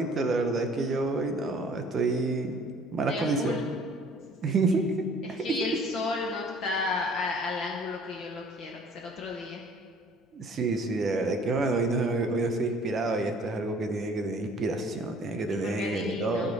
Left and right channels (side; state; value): both; normal; correlation 0.54